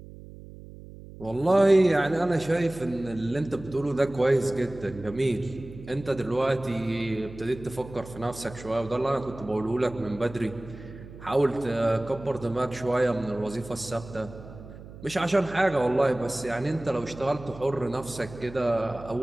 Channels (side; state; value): right; noise; hum, 16 dB below the sound